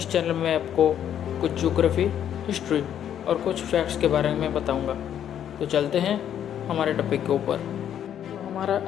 चैनल में आपको कुछ ज्योग्राफी, हिस्ट्री और कुछ फैक्ट्स के बारे में बताऊंगा। तो चलते हैं हमारे टॉपिक के ऊपर। तो हमारा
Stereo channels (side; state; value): right; quieter; 9.8 dB